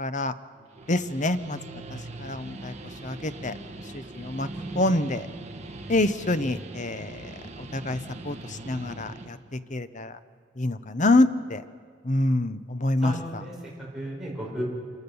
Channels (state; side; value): normal; both; correlation 0.65